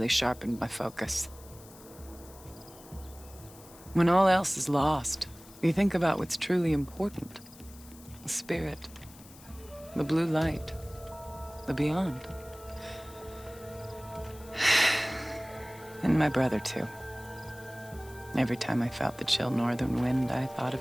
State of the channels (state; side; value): noise; left; hiss, 21 dB below the sound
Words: sharpened my focus. When all else is lost, you think about what's truly important. The spirit. The blue light. The beyond. And my brother, too. Every time I felt the chill northern wind, I thought